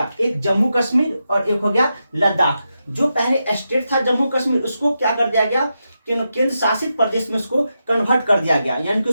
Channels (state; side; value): inverted; both; correlation -0.87